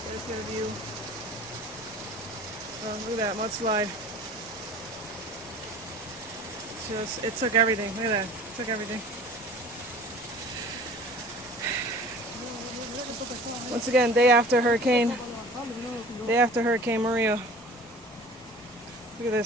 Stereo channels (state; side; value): normal; both; correlation 0.44